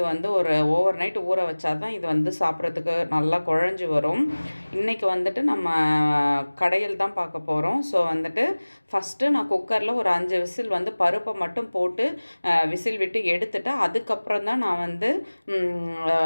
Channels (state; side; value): inverted; both; correlation -1.00